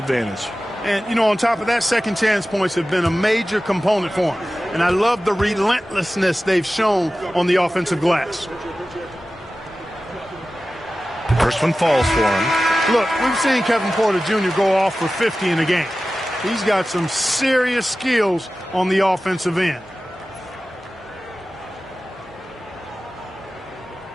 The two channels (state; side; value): normal; both; correlation 0.95